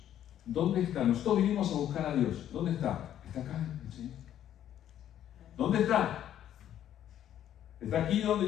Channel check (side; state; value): right; quieter; 11.0 dB